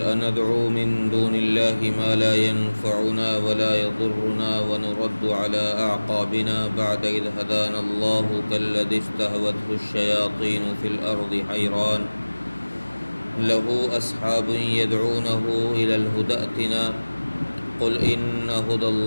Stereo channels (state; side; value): inverted; both; correlation -1.00